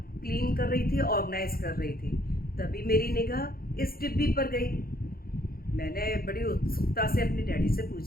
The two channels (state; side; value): late; right; 0.43 ms